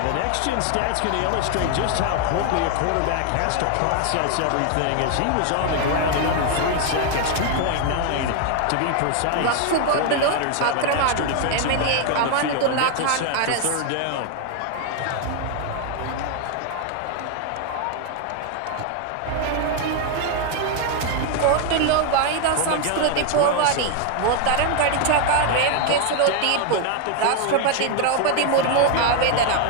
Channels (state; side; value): different; both; correlation 0.01